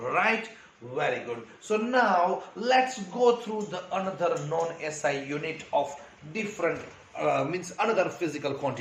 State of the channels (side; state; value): both; identical; correlation 1.00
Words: Very good. So now let's go through the another non-SI unit of different means another physical